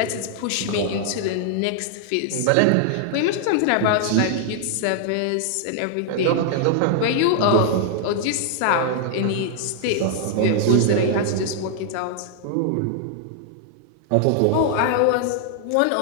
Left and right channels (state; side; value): different; both; correlation 0.00